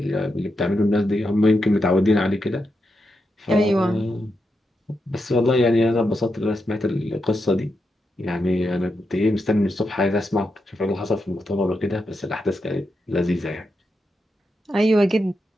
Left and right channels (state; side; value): normal; both; correlation 0.85